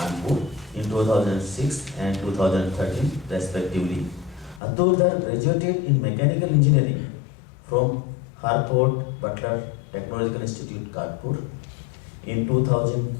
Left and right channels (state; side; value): drops out; right; at 4.6 s